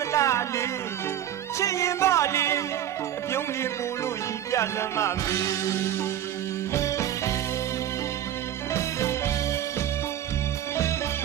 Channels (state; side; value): quieter; left; 11.0 dB